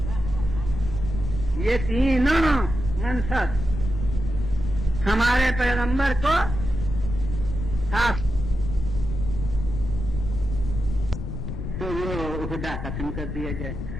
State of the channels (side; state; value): left; noise; rumble, 6 dB below the sound